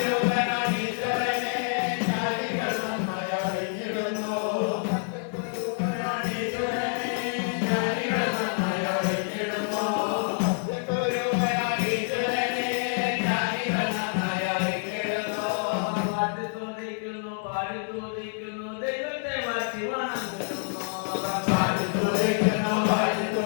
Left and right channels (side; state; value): right; silent; 60 dB below the other